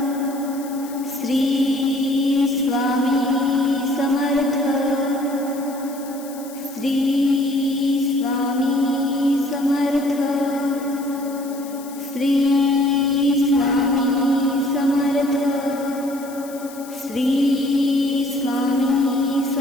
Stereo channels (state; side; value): noise; left; hiss, 18 dB below the sound